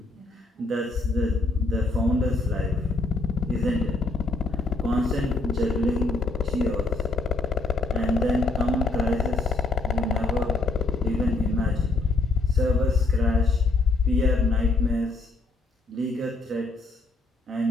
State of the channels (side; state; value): right; quieter; 3.4 dB